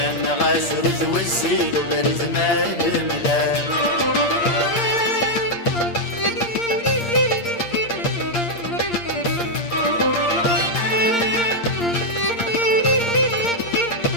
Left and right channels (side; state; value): right; late; 8.6 ms